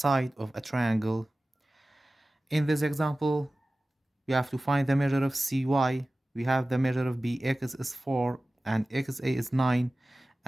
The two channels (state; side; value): normal; both; correlation 0.97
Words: of a triangle. In this example, we have to find the measure of CY. We have the measure of BX is 4 and XA is 9